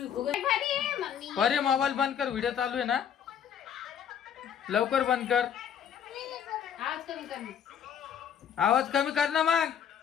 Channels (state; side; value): quieter; right; 8.5 dB